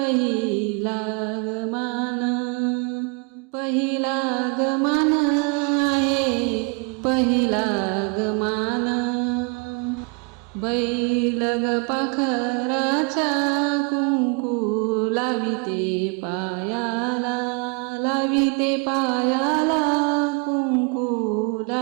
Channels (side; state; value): left; quieter; 33.6 dB